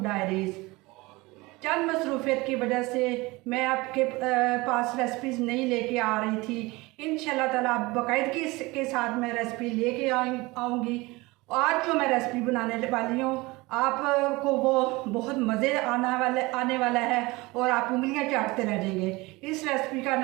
डायरीज़। चंद मसरूफियत की वजह से मैं आपके पास रेसिपीज़ नहीं लेके आ रही थी। इंशाल्लाह ताला बाकायदगी के साथ मैं रेसिपी लेके आऊँगी। आज जो मैं रेसिपी बनाने वाली हूँ आपको वो बहुत मज़े आने वाला है और आप उंगलियां चाटते रह जाएंगे। इस रेसिपी का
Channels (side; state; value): left; quieter; 22.5 dB